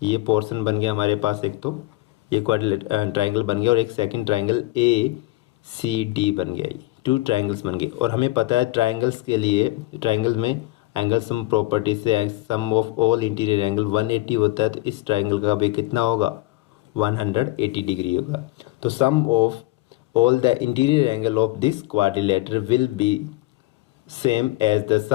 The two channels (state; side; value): quieter; right; 18.6 dB